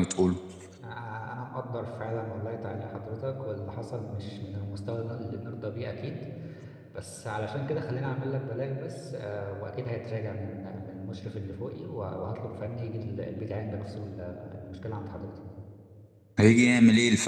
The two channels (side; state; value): both; identical; correlation 1.00